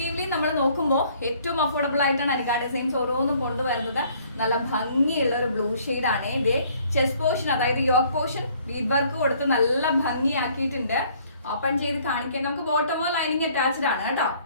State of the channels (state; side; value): inverted; both; correlation -0.60